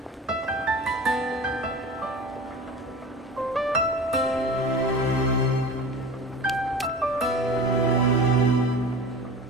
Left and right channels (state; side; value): normal; both; correlation 0.35